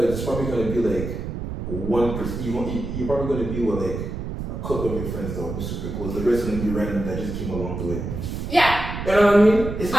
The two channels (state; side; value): noise; right; rumble, 6 dB below the sound